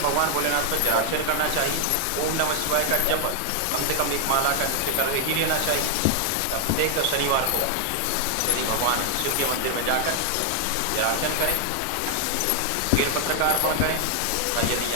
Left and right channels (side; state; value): both; different; correlation 0.00